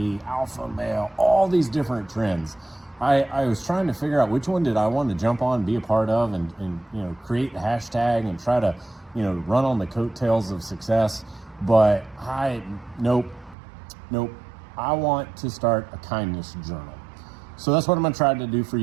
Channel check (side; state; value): left; drops out; at 13.6 s